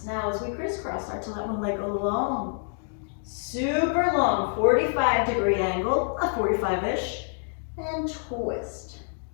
Now as we crisscross, start to let one leg go long. Super long, 45-degree angle, a 45-ish, and twist,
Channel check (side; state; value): right; silent; 60 dB below the other